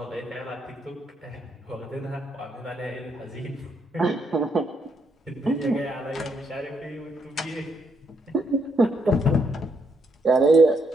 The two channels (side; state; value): both; normal; correlation 0.75